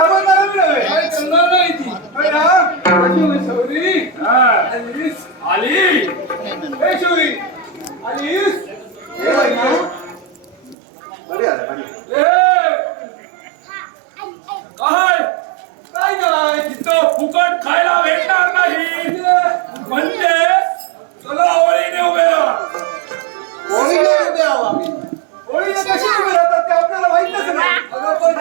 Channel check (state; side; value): drops out; left; at 10.8 s